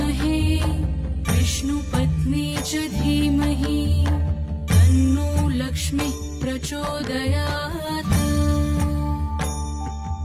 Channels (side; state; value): both; identical; correlation 1.00